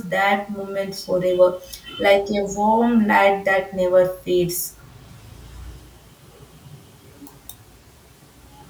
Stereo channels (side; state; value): both; identical; correlation 1.00